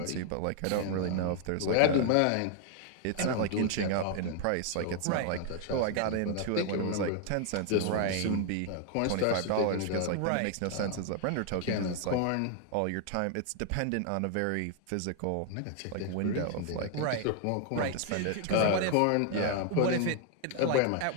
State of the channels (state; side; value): different; both; correlation 0.00